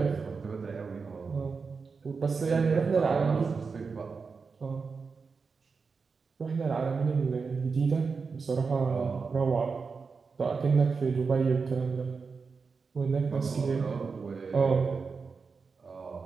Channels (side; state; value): left; quieter; 5.0 dB